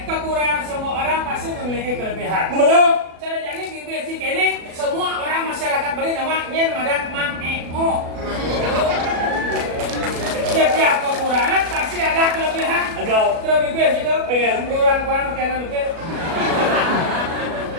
kekurangan semua orang pasti memiliki kelebihan. Benar. Cara jadi basic ini semua orang masyarakat beri nama nyen madan mang eo. Setiap kekurangan pasti ada kelebihan. Ada. Terlebih basic itu Pengen. kurang makanan lebih.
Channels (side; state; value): left; late; 37 ms